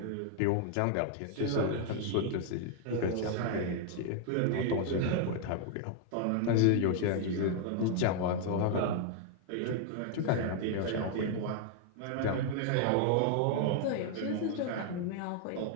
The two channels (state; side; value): different; both; correlation 0.00